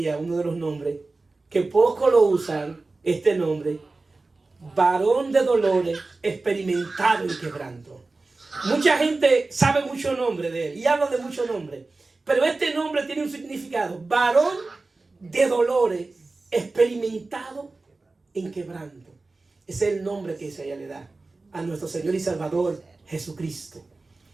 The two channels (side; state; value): left; quieter; 3.5 dB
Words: uno de los nombres, que poco lo usan, este nombre, varón de dolores, experimentado en quebranto. Mucha gente sabe mucho nombre de él y habla de muchos nombres, pero este nombre tiene un significado: varón de dolores, experimentado en quebranto. Ese es el nombre que Isaías le da a nuestro Señor y Salvador Jesucristo,